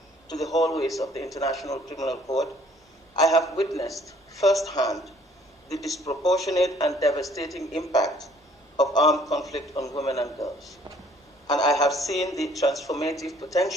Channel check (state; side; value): normal; both; correlation 0.59